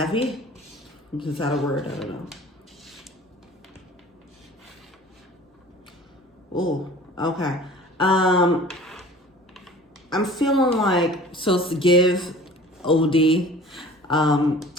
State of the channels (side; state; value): both; normal; correlation 0.45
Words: Is that a word? I don't know. Oh, okay. I'm feeling like, so it's give, OD, and